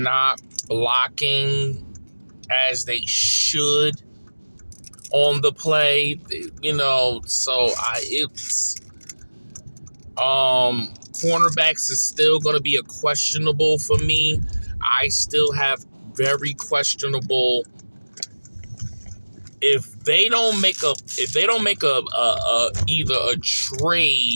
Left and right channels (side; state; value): both; inverted; correlation -1.00